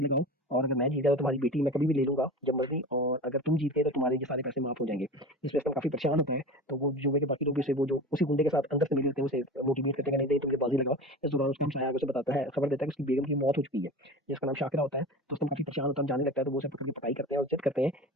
लगाओ। और अगर मैं जीत गया तो तुम्हारी बेटी मैं कभी भी ले लूंगा जब मर्जी, और अगर तुम जीत गए तो तुम्हारे ये सारे पैसे माफ हो जाएंगे। जिसमें असलम काफी परेशान होता है। तो वो जुए के बाकी लोग भी उसे वो जो उसी गुंडे के साथ अंदर से मिले होते हैं उसे मोटिवेट करते हैं कि नहीं नहीं तुम ये बाजी लगाओ। इस दौरान उसका हमसाया आगे उसे बताता है, खबर देता है कि उसकी बेगम की मौत हो चुकी है, जिसका नाम शाकिरा होता है। तो उसमें काफी परेशान होता है, जाने लगता है। तो वो उसे पकड़ के पटाई करते हैं और जिद करते हैं,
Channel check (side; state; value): both; normal; correlation 0.32